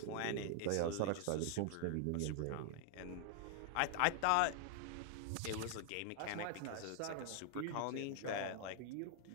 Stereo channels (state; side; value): different; both; correlation 0.00